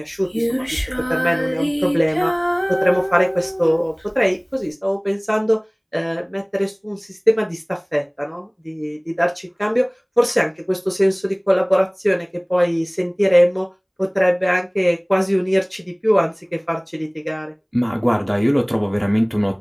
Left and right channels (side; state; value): both; identical; correlation 1.00